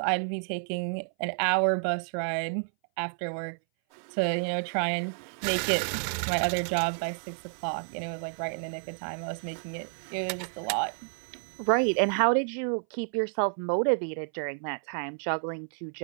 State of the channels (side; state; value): left; silent; 58 dB below the other